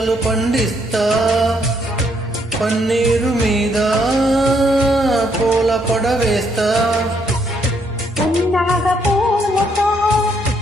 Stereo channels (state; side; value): normal; both; correlation 0.72